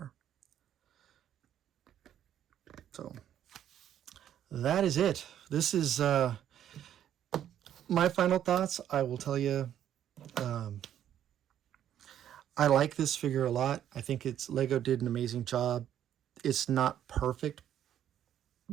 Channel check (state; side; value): quieter; left; 10.5 dB